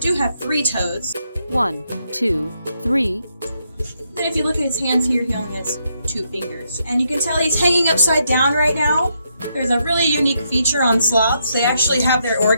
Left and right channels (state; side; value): inverted; both; correlation -0.78